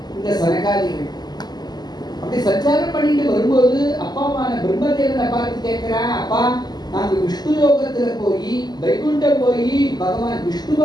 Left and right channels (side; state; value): right; late; 0.20 ms